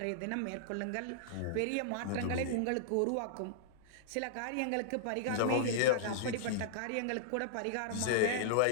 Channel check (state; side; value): different; both; correlation -0.02